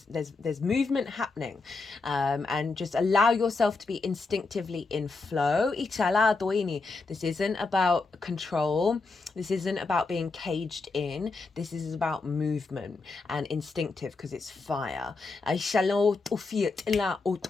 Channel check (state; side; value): quieter; right; 3.9 dB